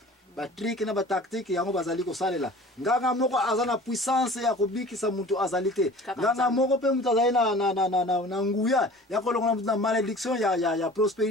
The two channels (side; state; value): both; normal; correlation 0.43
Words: batrik na batactique yango bazali kosalela nganga moko aza na puissance ya kobikisa mutu azali te nganga moko mpe mutu azali na nguya ya kolongola mutu na malédiction ya